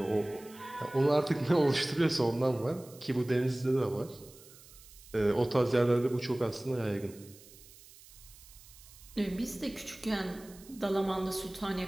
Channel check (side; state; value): right; noise; hiss, 21 dB below the sound